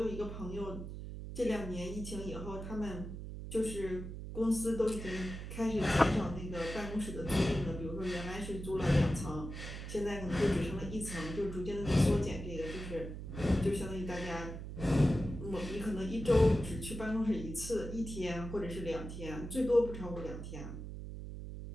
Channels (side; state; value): right; noise; hum, 8 dB below the sound